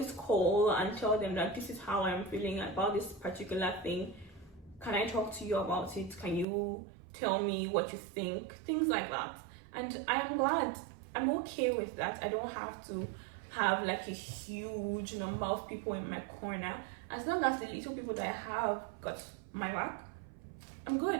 call and tell them that this is how I'm feeling about this particular thing. Can I talk to you about it? Can you tell me what you think? Things like that. And I am glad. I'm okay with that. I don't have to have like a huge number of people in my corner. As long as the little people that I have got my back, I'm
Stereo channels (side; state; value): left; drops out; at 6.5 s